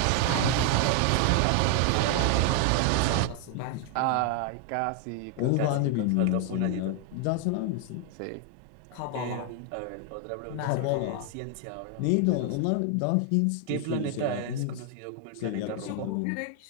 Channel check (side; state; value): both; different; correlation 0.00